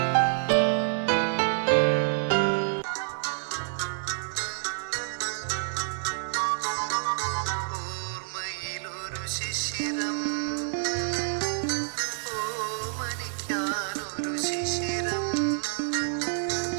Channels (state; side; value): silent; left; 59 dB below the other